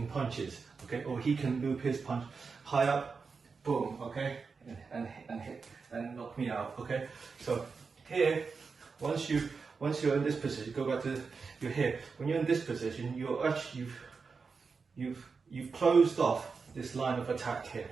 punches. Okay, or he can loop his punch high up. Boom! Okay, and hit and knock me out. Okay, so here once you're in this position, go back to you're here. When you're in this position, you're actually you've closed off this line of attack here,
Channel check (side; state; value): left; quieter; 5.0 dB